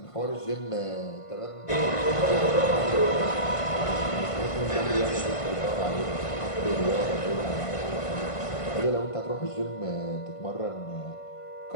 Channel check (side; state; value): right; late; 1.5 ms